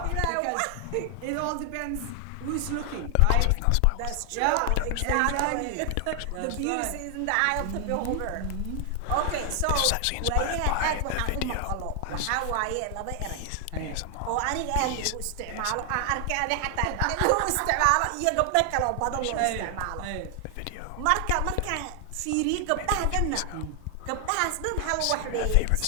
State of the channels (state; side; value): different; both; correlation 0.00